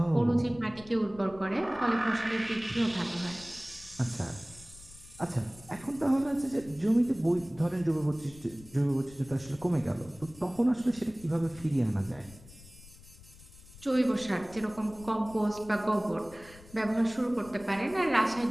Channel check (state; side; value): noise; left; rumble, 20 dB below the sound